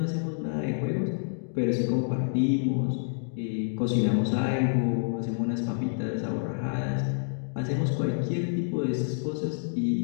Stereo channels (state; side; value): silent; right; digital silence